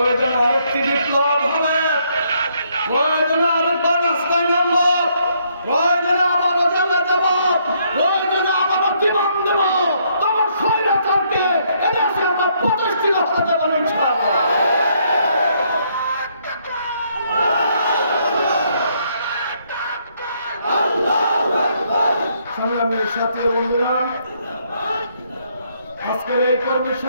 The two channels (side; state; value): both; inverted; correlation -0.71